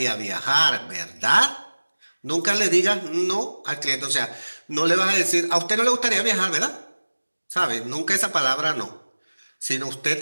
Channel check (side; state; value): both; inverted; correlation -1.00